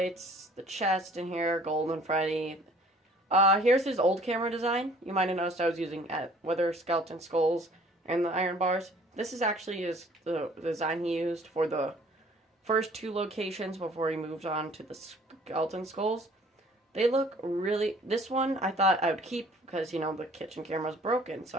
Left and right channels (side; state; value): both; normal; correlation 0.54